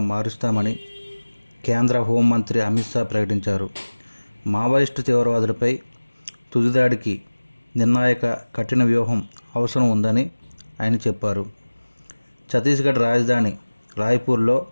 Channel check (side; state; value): both; inverted; correlation -1.00